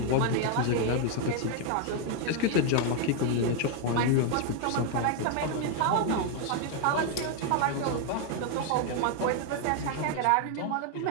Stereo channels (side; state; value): both; different; correlation 0.01